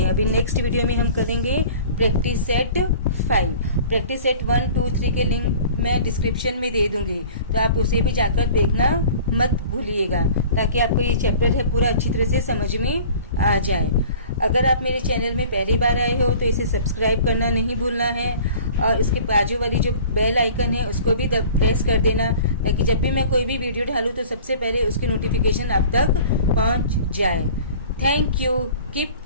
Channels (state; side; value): inverted; both; correlation -0.45